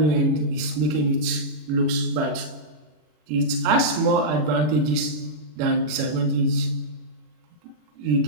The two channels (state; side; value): late; left; 40 ms